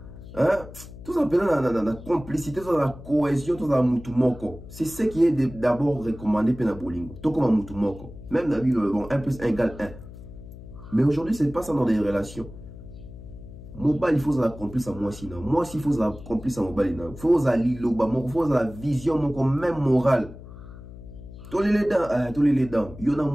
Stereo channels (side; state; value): left; noise; hum, 15 dB below the sound